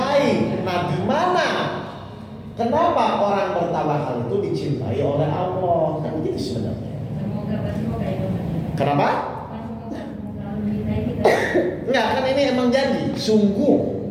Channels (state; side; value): identical; both; correlation 1.00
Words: Nah, di mana? Kenapa orang bertawakal itu dicintai oleh Allah? Kan begitu sebenarnya. Kenapa? Enggak, kan ini emang janji. Sungguh